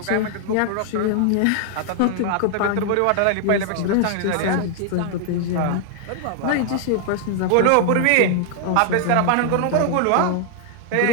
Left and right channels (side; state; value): both; different; correlation 0.00